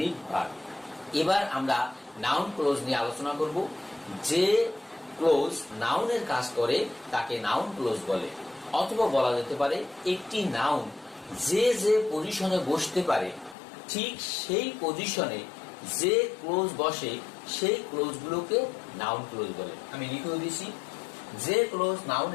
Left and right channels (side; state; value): right; drops out; at 13.6 s